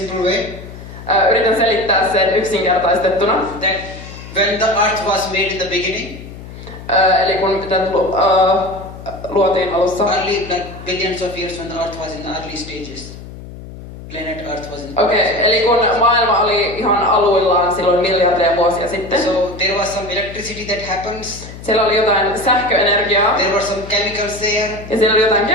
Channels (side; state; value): left; noise; hum, 14 dB below the sound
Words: way. Yritän selittää sen yksinkertaistettuna. That when the earth was made in the beginning, Eli kun tätä luotiin alussa. early, like billions of years when the earth was in the early stages. Planet Earth was in the Okei, eli kun maailma oli ihan aluillaan silloin miljardeja vuosia sitten. So there was some electricity that happens. Siellä oli jotain sähköenergiaa There were some chemicals there. ja siellä oli jotain